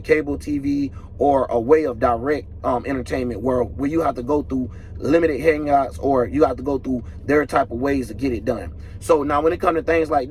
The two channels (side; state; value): both; identical; correlation 1.00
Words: TV or a way of direct entertainment where you have to go through limited hangouts or you have to go through their type of ways to get it done. So now when it comes to things like